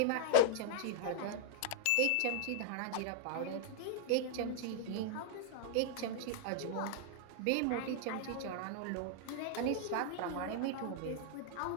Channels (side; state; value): both; different; correlation -0.01